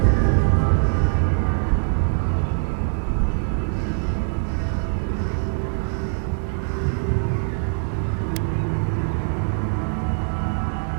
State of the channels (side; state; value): left; silent; 64 dB below the other